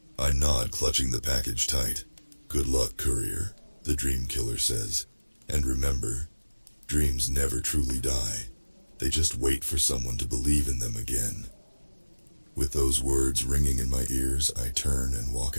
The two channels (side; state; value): both; inverted; correlation -1.00